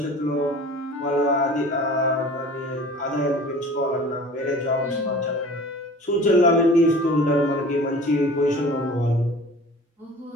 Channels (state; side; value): normal; both; correlation 0.43